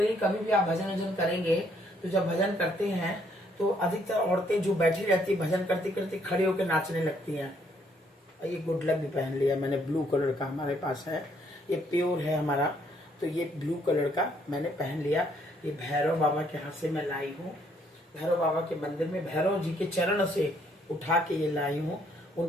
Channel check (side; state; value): both; normal; correlation 0.68